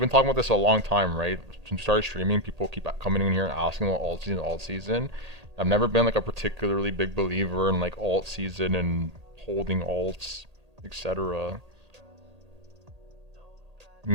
talking about this a long time, right? Since we started streaming, people keep coming in here and asking about alt season. I've never been like a particularly big believer in like alt season and holding alts, etc.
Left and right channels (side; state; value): left; late; 1.8 ms